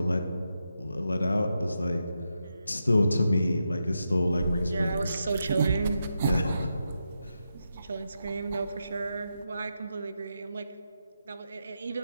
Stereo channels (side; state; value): both; inverted; correlation -0.86